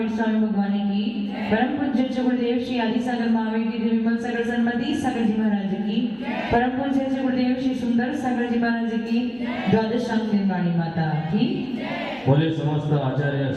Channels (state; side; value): noise; left; hum, 28 dB below the sound